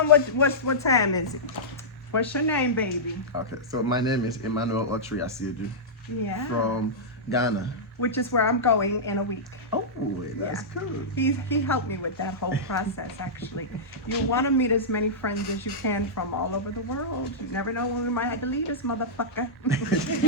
what time is it? What's your name, baby? Okay, so my name is Emmanuel Otri Asiedu Yeah. from Ghana. Which is where I'm going in a week. Oh, that's cool. He helped me with that whole process, actually. You want to meet as many friends as you can from all over the world. You never know when we might have to leave this motherfucker.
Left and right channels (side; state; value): both; normal; correlation -0.13